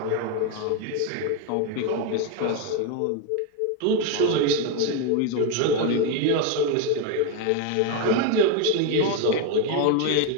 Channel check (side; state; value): both; different; correlation 0.02